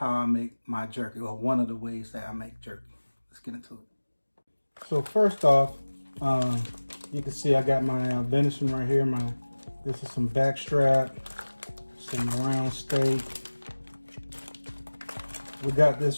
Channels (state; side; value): inverted; both; correlation -1.00